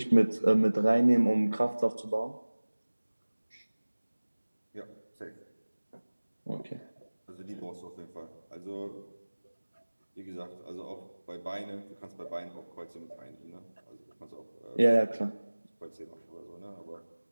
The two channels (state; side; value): inverted; both; correlation -1.00